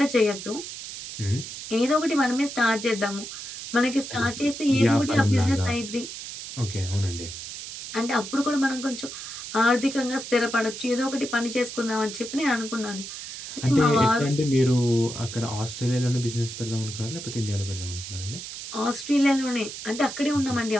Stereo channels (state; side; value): noise; right; hiss, 9 dB below the sound